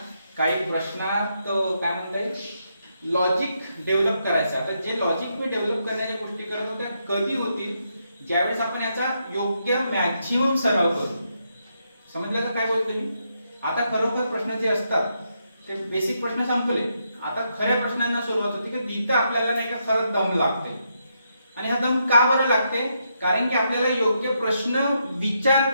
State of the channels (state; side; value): inverted; both; correlation -0.80